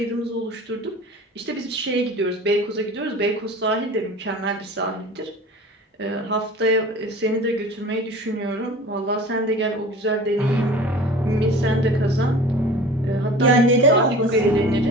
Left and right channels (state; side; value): normal; both; correlation 0.40